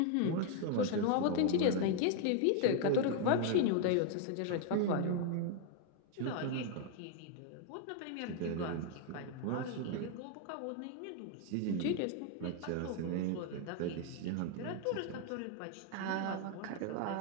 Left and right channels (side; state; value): both; different; correlation 0.00